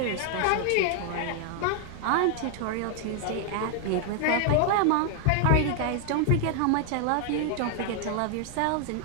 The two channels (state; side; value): different; both; correlation 0.00